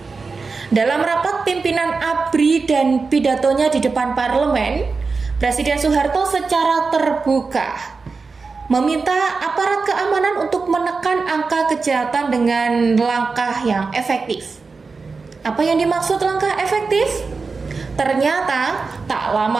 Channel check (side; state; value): left; quieter; 4.5 dB